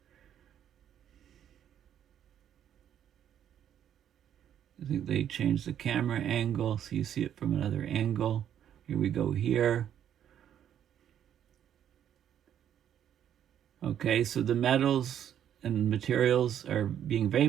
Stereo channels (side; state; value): left; quieter; 9.9 dB